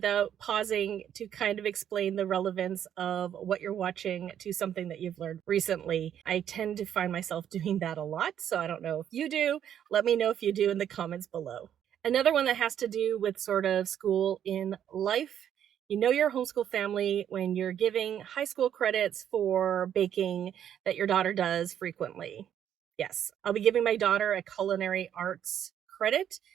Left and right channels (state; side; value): quieter; left; 9.8 dB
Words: pausing to kind of explain the relevance of what you're watching to something that you've learned recently. I tend to find myself doing that a lot, so I don't know if you do. Let me know if you do in the comments below. Another one that has to do with sort of school in life. You know you're a homeschool family when you're giving high school credits for baking that your daughter does frequently. Yes, I'll be giving my daughter a culinary arts credit